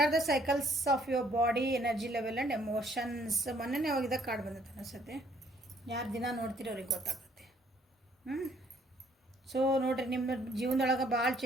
the cycles of your body, energy level and emotions. ಮೊನ್ನೆ ಅವಾಗ ಕಾರ್ಡ್ ಬಂದೈತೆ ಅನಿಸುತ್ತೆ. ಯಾರು ದಿನ ನೋಡ್ತೀರಿ ಅವ್ರಿಗೆ ಗೊತ್ತಾಗುತ್ತೆ. ಸೊ ನೋಡಿರಿ, ನಿಮ್ಮ ಜೀವನದೊಳಗೆ ಭಾಳ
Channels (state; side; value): normal; both; correlation 0.64